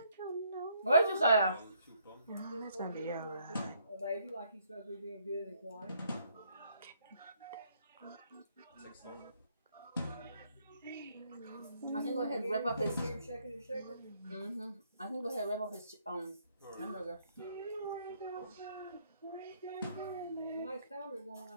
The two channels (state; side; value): inverted; both; correlation -0.69